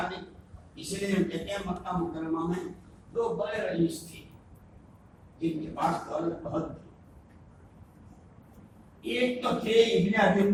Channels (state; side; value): identical; both; correlation 1.00